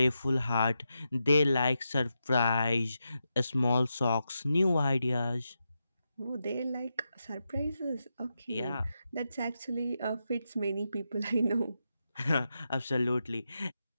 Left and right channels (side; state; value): both; inverted; correlation -0.87